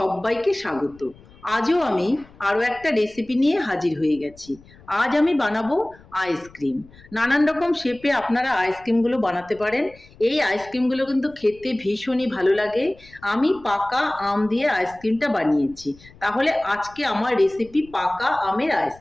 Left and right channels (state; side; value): noise; left; rumble, 24 dB below the sound